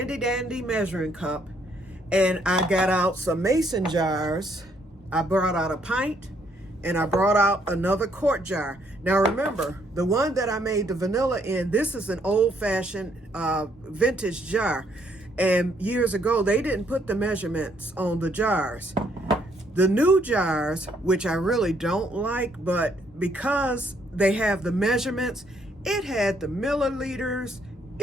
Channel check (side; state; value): both; normal; correlation 0.69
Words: dandy measuring cup and I got out some mason jars. I brought out a pint. And I brought out another quart jar. Now remember, the one that I made the vanilla in, this is an old-fashioned vintage jar. And years ago, they didn't put the measurements on the jars. The new jars, which I really don't like, but because they have the measurements, it had the milliliters,